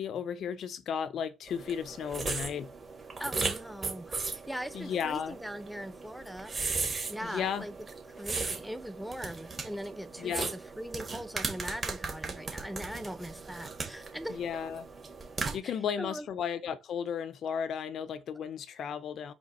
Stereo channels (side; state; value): both; normal; correlation 0.75